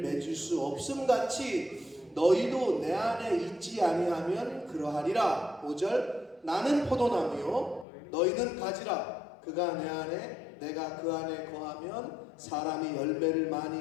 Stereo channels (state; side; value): drops out; right; at 7.9 s